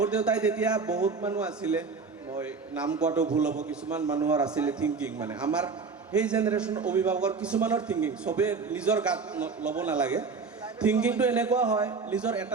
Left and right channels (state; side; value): quieter; left; 4.8 dB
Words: দেউতাই তেতিয়া বহুত মানুহ আছিলে মই নাম কোৱাটো ভুল হ'ব কিছুমান মানুহৰ আছিলে থিংকিং মানে আমাৰ সেই জেনেৰেশ্যন অভিভাৱকৰ কিছুমানৰ থিংকিং চবে নিজৰ গাত ল'ব নালাগে থিংকিংটো এনেকুৱা হয় নিজৰ